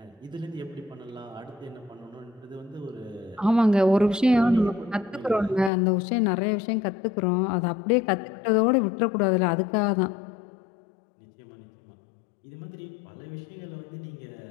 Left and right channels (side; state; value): right; drops out; at 5.7 s